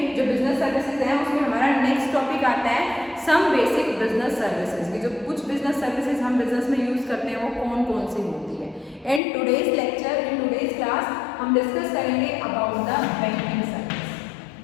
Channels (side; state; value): right; drops out; at 9.2 s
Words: जो business services हैं उसमें हमारा नेक्स्ट टॉपिक आता है सम बेसिक बिजनेस सर्विसेज की. जो कुछ बिजनेस सर्विसेज हम बिजनेस में यूज करते हैं वो कौन कौन सी होती है. In today's lecture, in today's class हम डिस्कस करेंगे अबाउट द बैंकिंग सर्विस.